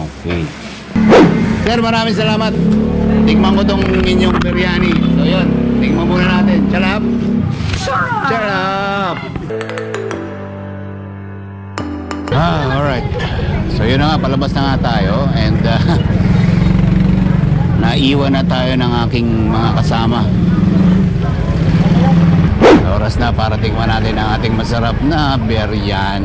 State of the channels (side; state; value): both; identical; correlation 1.00